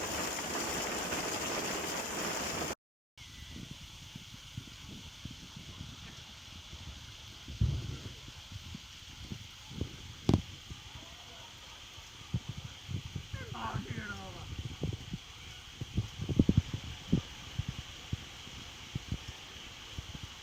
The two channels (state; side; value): normal; both; correlation 0.79